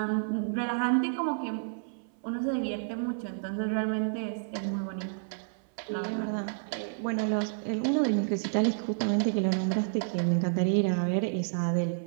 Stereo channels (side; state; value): left; silent; 56 dB below the other